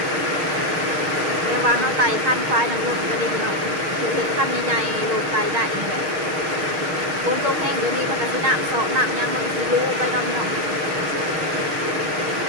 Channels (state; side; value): late; left; 6.5 ms